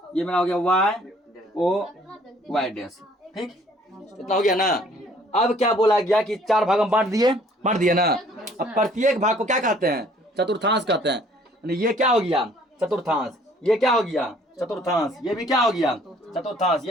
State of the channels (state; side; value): normal; both; correlation 0.58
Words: ये मेरा हो गया वाई ओ वाई डैश, ठीक। इतना हो गया ना। अब क्या बोला गया कि 4 भाग में बांट दिए ना। अब प्रत्येक भाग को क्या कहते हैं चतुर्थांश कहते हैं। यानी ये क्या हो गया चतुर्थांश, ये क्या हो गया चतुर्थांश, ये भी क्या हो गया चतुर्थांश,